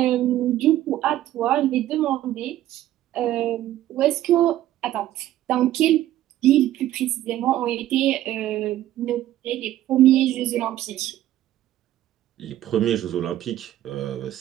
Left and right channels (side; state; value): left; quieter; 13.5 dB